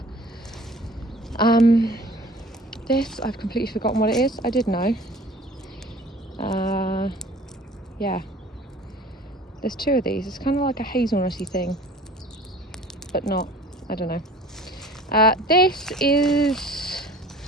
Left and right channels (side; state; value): both; normal; correlation 0.47